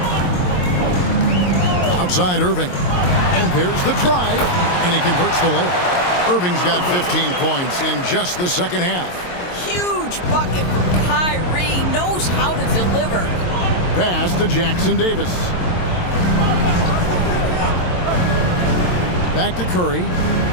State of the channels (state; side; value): late; right; 22 ms